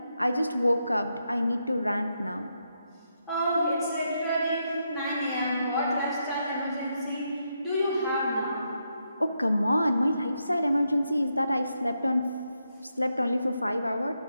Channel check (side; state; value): both; inverted; correlation -0.82